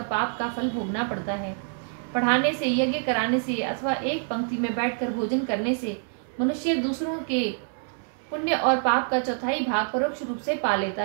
पाप का फल भोगना पड़ता है। पढ़ाने से, यज्ञ कराने से अथवा एक पंक्ति में बैठकर भोजन करने से मनुष्य दूसरों के पुण्य और पाप का चौथाई भाग परोक्ष रूप से पा लेता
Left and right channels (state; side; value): silent; left; 61 dB below the other